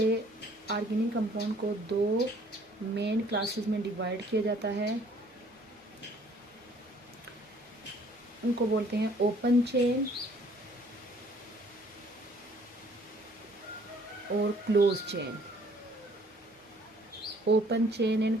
ऑर्गेनिक कंपाउंड को दो मेन क्लासेस में डिवाइड किया जाता है। उनको बोलते हैं ओपन चेन और close chain. Open chain and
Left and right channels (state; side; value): normal; both; correlation 0.59